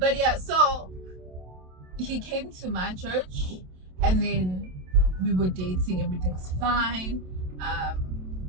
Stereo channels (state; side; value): late; left; 27 ms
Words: yeah, so he came to my church, and then we were dating, everything was fine.